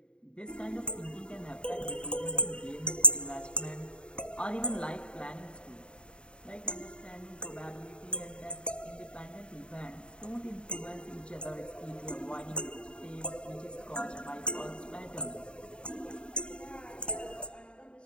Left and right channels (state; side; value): late; right; 0.053 ms